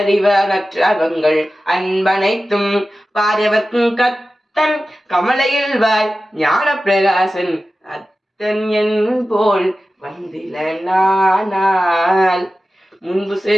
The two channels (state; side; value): normal; both; correlation 0.94